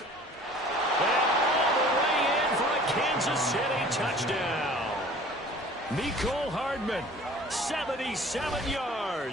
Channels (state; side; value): normal; both; correlation 0.48